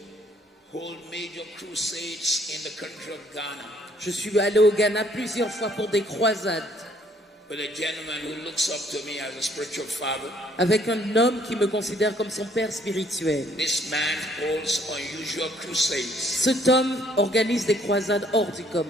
hold major crusades in the country of Ghana. Je suis allé au Ghana plusieurs fois pour des croisades. With a gentleman who looks up to me as a spiritual father. Avec un homme qui me considère comme son père spirituel. This man holds unusual crusades. Cet homme organise des croisades hors du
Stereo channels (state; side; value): normal; both; correlation 0.63